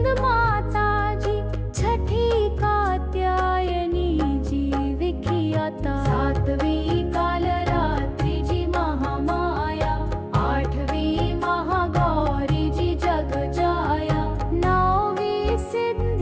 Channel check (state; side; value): identical; both; correlation 1.00